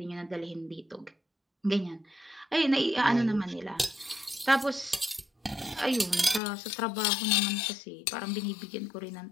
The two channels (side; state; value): right; drops out; at 6.4 s